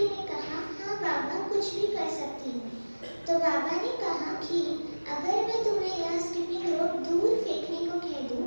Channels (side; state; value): both; inverted; correlation -1.00